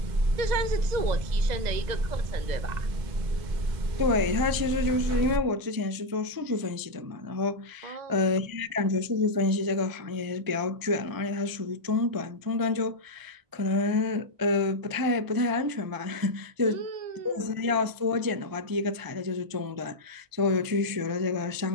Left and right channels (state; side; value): late; left; 1.0 ms